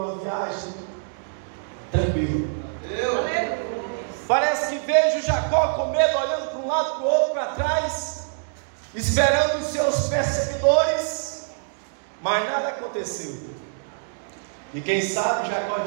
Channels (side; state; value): left; silent; digital silence